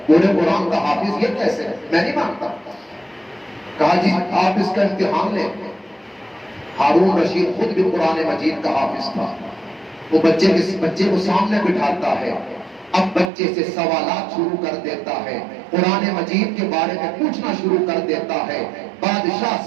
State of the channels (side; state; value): left; drops out; at 13.3 s